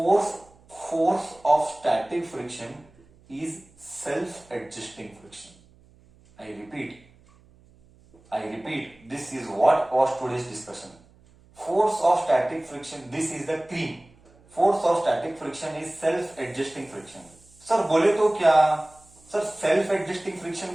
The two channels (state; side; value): noise; right; hum, 28 dB below the sound